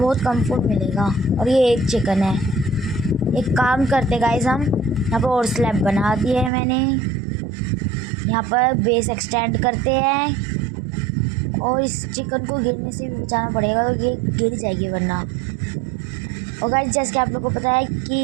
कम फूड मिलेगा। और ये एक चिकन है। एक काम करते गाइस, हम यहाँ पर और स्लैब बना दिए है मैंने। यहाँ पर बेस एक्सटेंड करते हैं और इस चिकन को गिरने से भी बचाना पड़ेगा, तो ये गिर जाएगी वरना। और गाइस जैसे कि आप लोगों को पता है कि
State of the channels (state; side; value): drops out; left; at 6.5 s